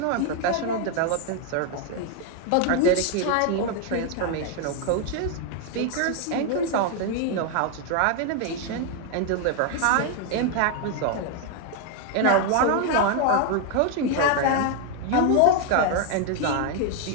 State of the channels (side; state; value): both; different; correlation 0.00